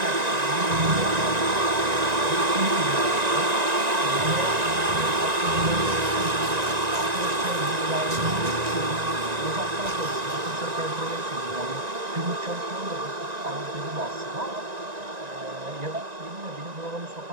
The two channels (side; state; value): left; late; 1.9 ms